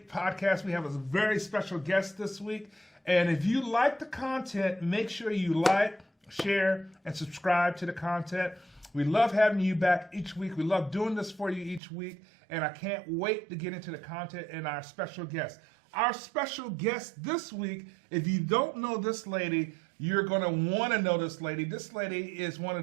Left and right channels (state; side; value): drops out; left; at 11.8 s